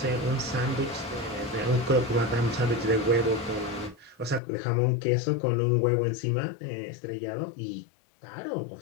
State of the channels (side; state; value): right; drops out; at 4.4 s